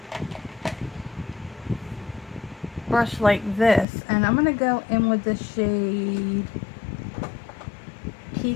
brush like this, and I'm going to go in with the shade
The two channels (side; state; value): right; drops out; at 3.9 s